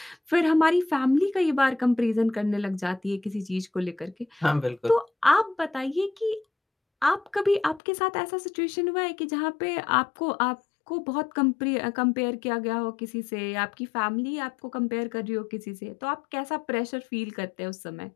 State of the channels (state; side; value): drops out; right; at 7.8 s